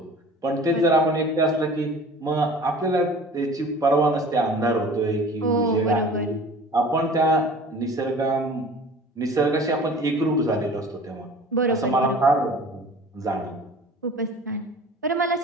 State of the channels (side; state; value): both; normal; correlation 0.44